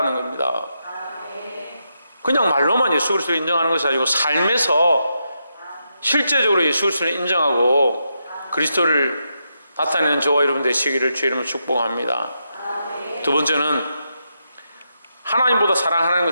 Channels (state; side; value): inverted; both; correlation -0.83